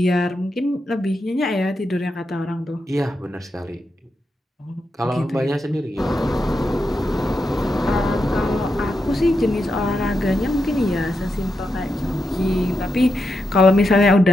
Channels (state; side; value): normal; both; correlation 0.85